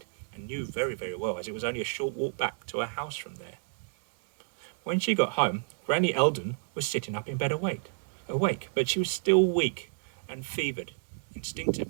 and knew very, very well, as it was only a short walk back to her house from there. When she got home, Granny Eldon was sitting up in bed awake, but she was still weak and fevered.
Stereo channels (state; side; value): silent; left; 57 dB below the other